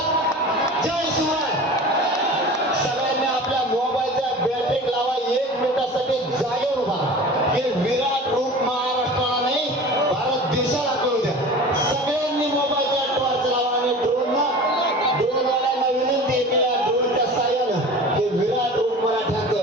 जय शिवराय. सगळ्यांनी आपल्या मोबाईलच्या बॅटरी लावा. 1 मिनिटासाठी जागेवर उभा. हे विराट रूप महाराष्ट्राला नाही भारत देशाला कळू द्या. सगळ्यांनी मोबाईलच्या टॉर्च लावा आणि ड्रोनवाल्यांना विनंती केल्या ड्रोनच्या साह्यानं हे विराट रूप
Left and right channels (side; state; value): both; normal; correlation 0.38